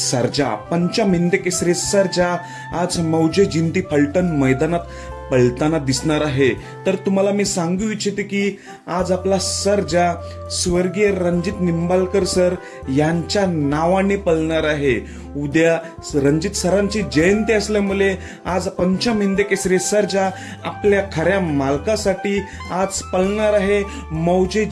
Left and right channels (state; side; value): identical; both; correlation 1.00